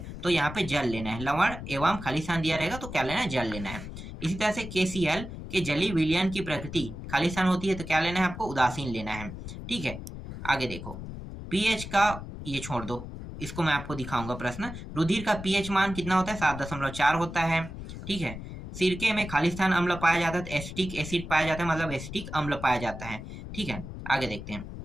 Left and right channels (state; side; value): noise; left; rumble, 10 dB below the sound